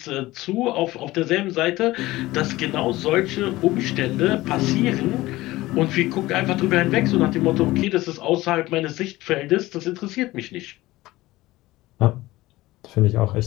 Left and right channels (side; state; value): right; quieter; 18.2 dB